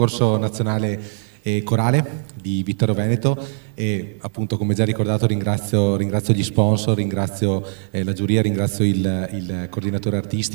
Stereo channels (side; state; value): left; silent; 55 dB below the other